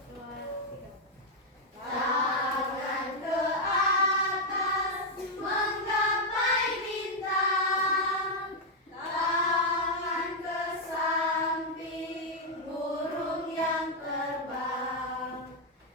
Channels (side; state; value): both; normal; correlation 0.00